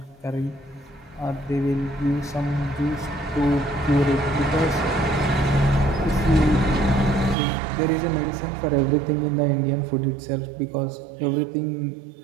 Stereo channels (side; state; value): left; drops out; at 7.4 s